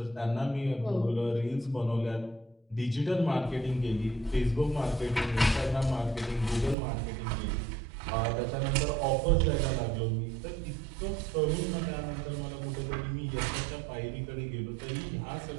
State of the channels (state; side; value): drops out; left; at 6.8 s